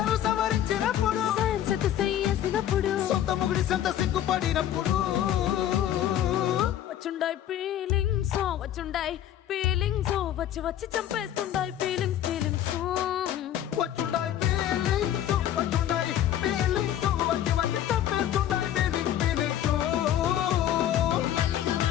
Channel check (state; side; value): quieter; right; 11.3 dB